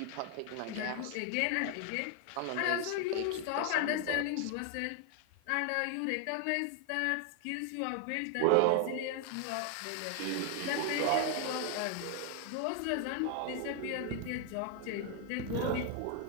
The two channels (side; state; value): both; different; correlation 0.00